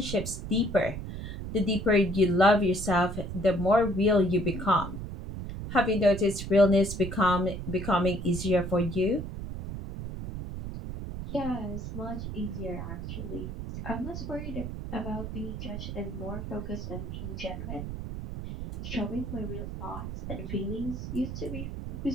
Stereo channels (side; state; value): right; noise; rumble, 7 dB below the sound